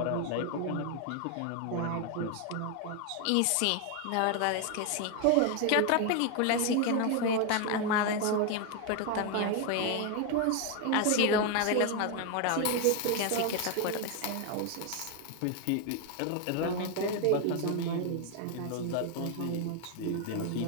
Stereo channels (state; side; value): different; both; correlation 0.01